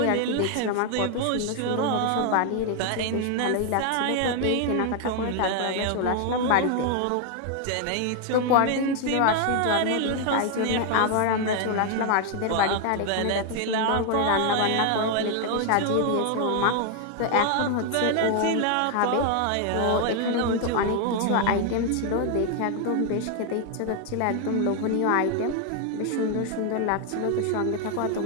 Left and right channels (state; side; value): different; both; correlation 0.00